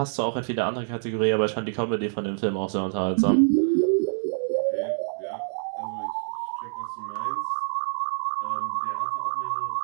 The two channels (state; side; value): silent; left; digital silence